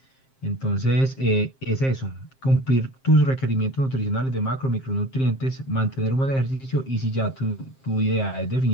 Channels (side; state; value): right; late; 7.5 ms